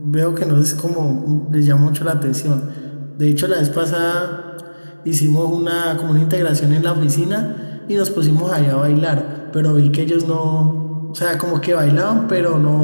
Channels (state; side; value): inverted; both; correlation -1.00